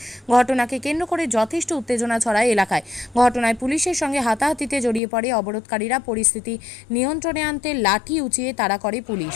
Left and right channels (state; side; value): drops out; right; at 5.0 s